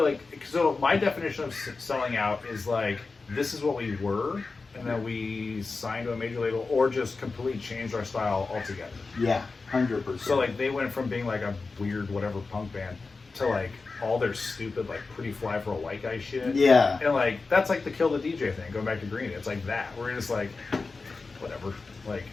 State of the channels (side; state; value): right; quieter; 4.1 dB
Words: like, so my definition of selling out is like, this is what we were, and then we signed to a major label, or just completely changed our style altogether. Yeah, 100%. So like, they went from being like a weird whatever punk band to like all their stupid like Pretty Fly for a White Guy shit. Yeah. And like, that's like the Kill the DJ thing, going back to Green. It's like that. We're just like, whatever. Like,